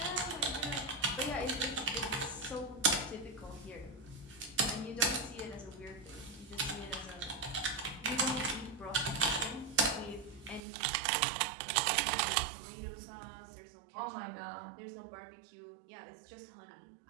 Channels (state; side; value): drops out; left; at 10.6 s